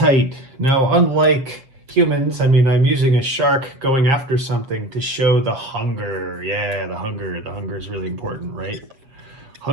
Now, unlike humans, I'm using a shark going after something to show the hunger. Yeah, the hunger. The hunger is really important, right?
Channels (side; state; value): left; late; 7.6 ms